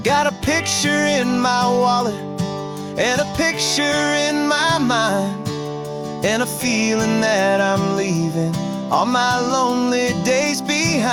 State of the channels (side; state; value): both; identical; correlation 1.00